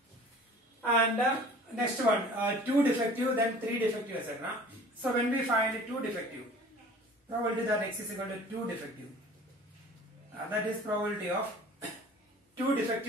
and next one 2 defective, then 3 defective, etc. So when we find 2 defective, probability that x is equal to 2 defective, that is probability of 2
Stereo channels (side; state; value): both; normal; correlation 0.46